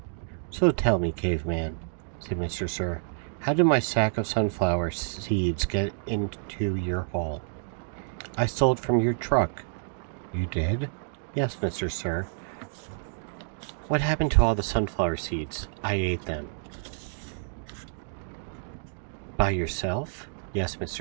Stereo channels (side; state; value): left; silent; digital silence